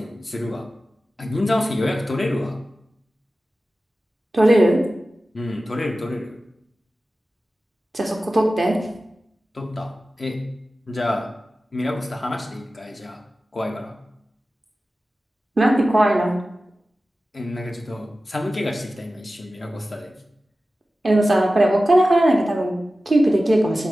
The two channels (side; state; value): both; normal; correlation 0.95